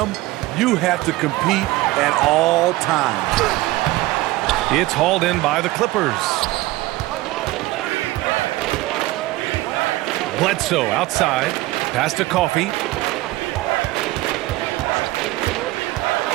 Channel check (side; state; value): left; quieter; 18.8 dB